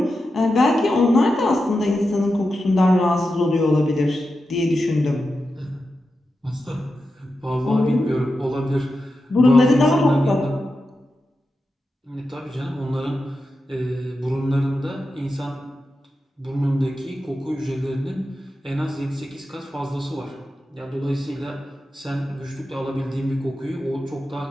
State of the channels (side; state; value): both; normal; correlation 0.90